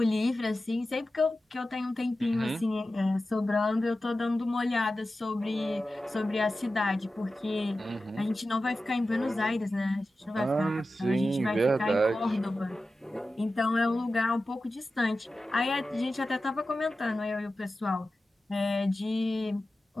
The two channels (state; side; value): normal; both; correlation 0.94